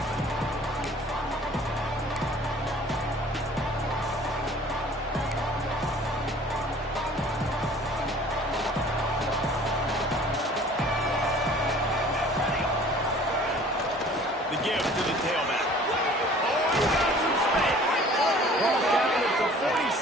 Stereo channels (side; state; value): both; normal; correlation 0.50